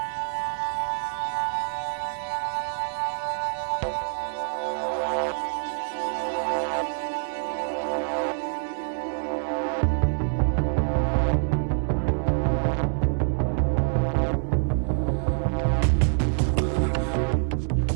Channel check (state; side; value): silent; left; digital silence